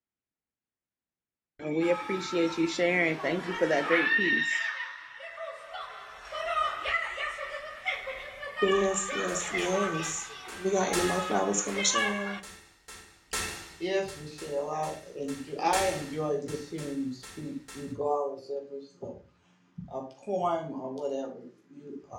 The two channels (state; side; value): identical; both; correlation 1.00